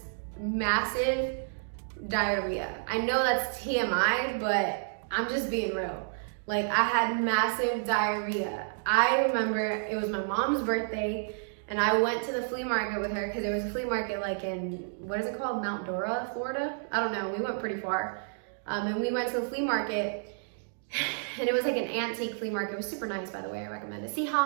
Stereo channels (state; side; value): silent; left; digital silence